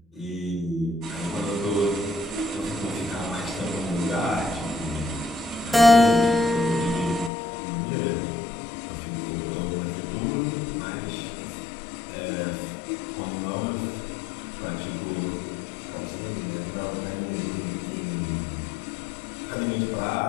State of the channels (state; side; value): drops out; right; at 7.3 s